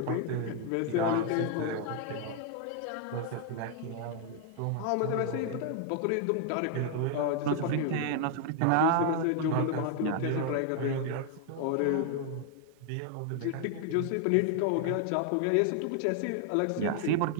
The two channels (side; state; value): both; different; correlation 0.00